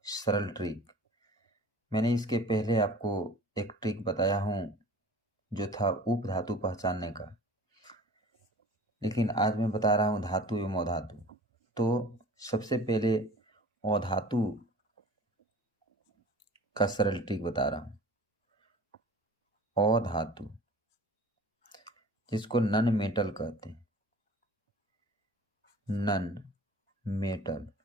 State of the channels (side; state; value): both; normal; correlation 0.43